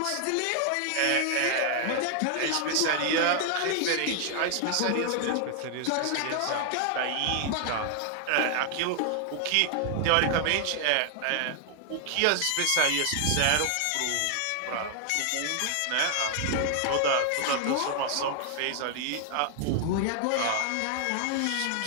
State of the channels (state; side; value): different; both; correlation 0.00